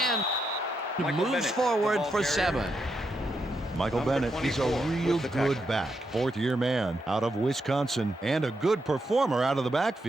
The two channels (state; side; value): normal; both; correlation 0.83